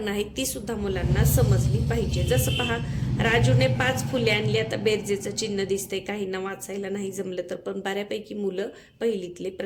आहेत ती सुद्धा मुलांना समजली पाहिजे. जसं पहा, राजूने 5 फुले आणली. आता बेरजेचं चिन्ह दिसतंय, काहींना वाचायला नाही जमलं तर पण बऱ्यापैकी मुलं पहिलीतले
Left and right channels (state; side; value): identical; both; correlation 1.00